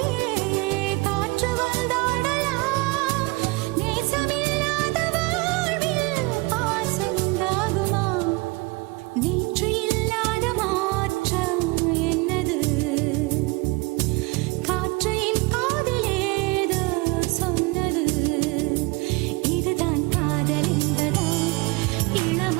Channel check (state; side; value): quieter; left; 25.6 dB